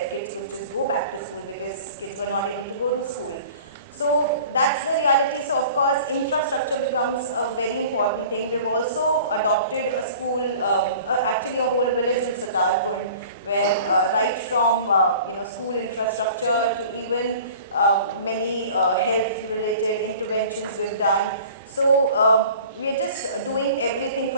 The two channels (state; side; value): inverted; both; correlation -0.45